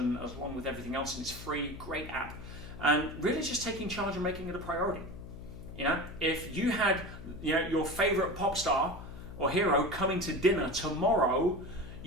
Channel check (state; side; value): noise; left; hum, 13 dB below the sound